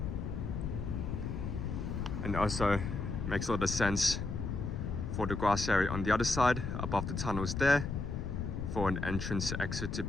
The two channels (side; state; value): left; noise; rumble, 3 dB below the sound